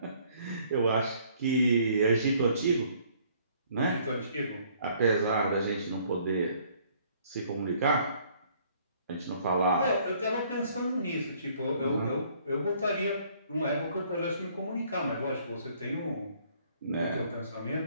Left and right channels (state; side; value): inverted; both; correlation -0.61